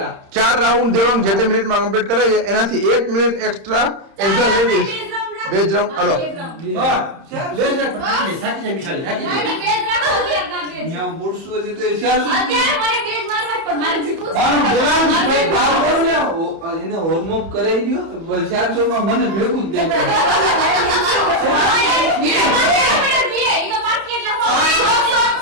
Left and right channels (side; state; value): left; late; 30 ms